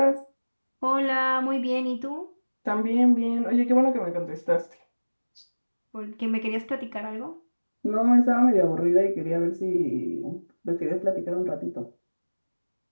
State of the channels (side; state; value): both; inverted; correlation -1.00